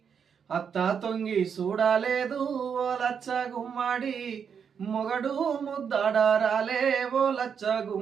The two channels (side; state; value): left; quieter; 7.1 dB